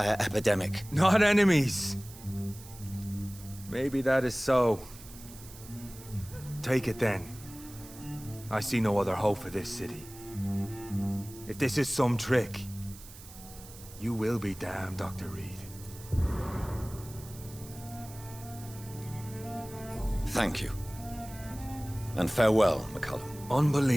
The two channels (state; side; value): noise; right; hiss, 18 dB below the sound